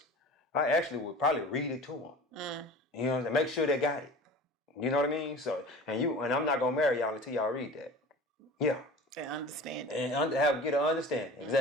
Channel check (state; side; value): normal; both; correlation 0.39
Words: I actually would probably read it to them. You know what I'm saying? Make sure they got it. You know what I mean? So and I'm not gonna marry y'all until y'all read that. Yeah. And understand. And get an understanding.